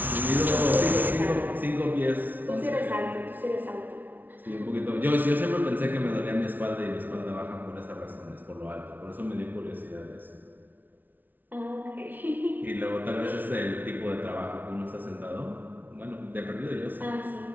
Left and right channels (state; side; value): late; left; 0.085 ms